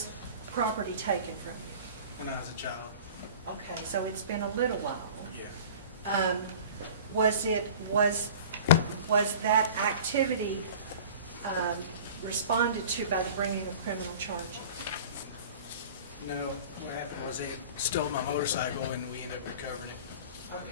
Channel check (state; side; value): inverted; both; correlation -0.41